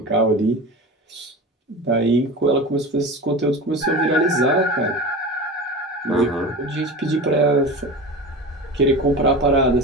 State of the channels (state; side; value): normal; both; correlation 0.30